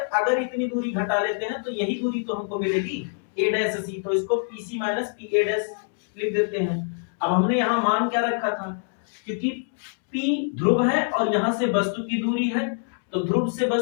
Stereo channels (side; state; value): right; silent; digital silence